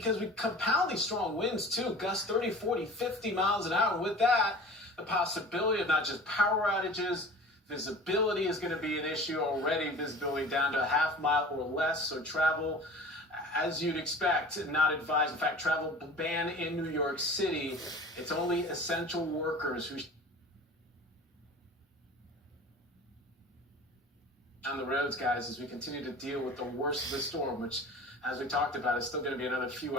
we compound these strong winds too, gusts 30, 40, 50 miles an hour. And with that, the possibility of not just power outages, visibility is going to be an issue already, visibility down to a half mile or less, so travel, as you'd expect, not advised. In fact, travel ban in New York City. It's only essential workers who on the roads, guys, as we continue to deal with the worst of the storm, which, as we talked about, is still going to be another few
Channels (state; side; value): normal; both; correlation 0.41